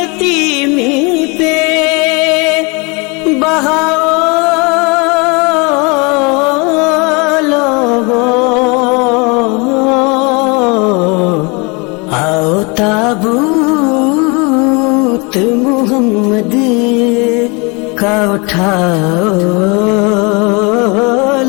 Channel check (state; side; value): quieter; right; 29.7 dB